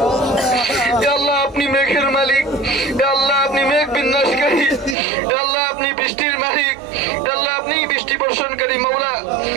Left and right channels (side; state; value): left; drops out; at 5.0 s